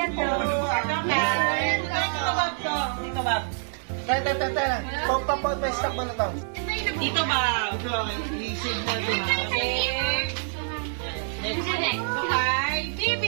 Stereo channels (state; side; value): silent; left; digital silence